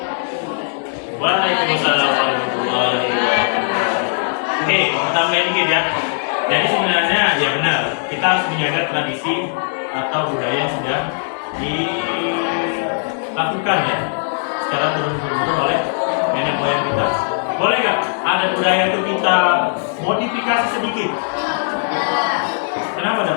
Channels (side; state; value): right; silent; 67 dB below the other